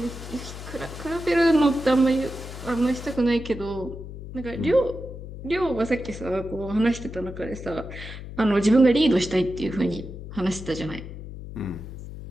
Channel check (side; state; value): left; noise; hum, 11 dB below the sound